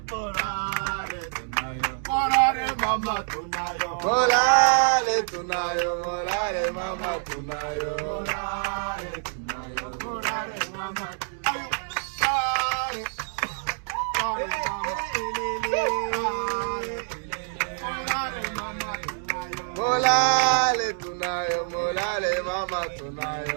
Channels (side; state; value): left; silent; digital silence